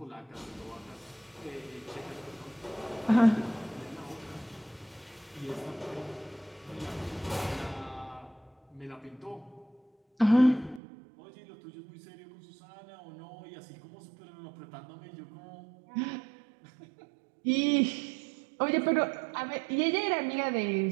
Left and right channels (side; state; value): left; drops out; at 10.8 s